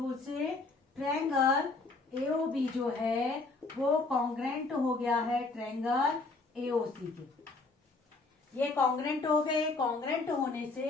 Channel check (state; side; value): quieter; right; 3.6 dB